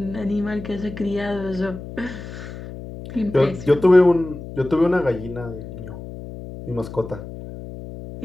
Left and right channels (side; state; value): left; noise; hum, 12 dB below the sound